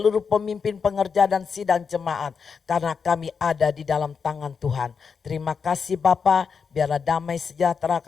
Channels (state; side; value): quieter; right; 5.8 dB